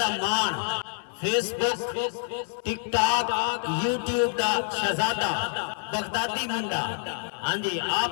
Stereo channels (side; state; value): right; silent; digital silence